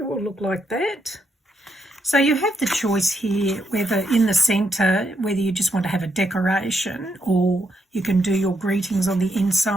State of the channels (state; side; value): normal; both; correlation 0.79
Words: will look like that. So you have the choice here whether in the centre, whether you just want to have a decoration or you can do your greetings on the